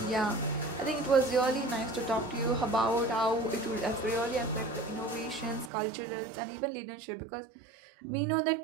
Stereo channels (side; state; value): left; drops out; at 5.7 s